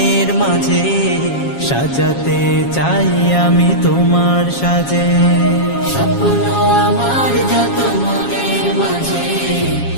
মাঝে সাজাতে চাই আমি তোমার সাজে। স্বপ্ন আমার যত মনের মাঝে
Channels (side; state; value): right; late; 7.3 ms